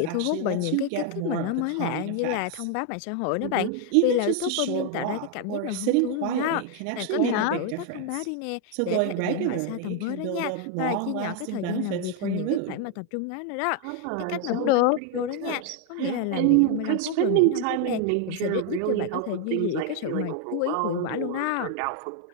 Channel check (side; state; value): both; different; correlation 0.01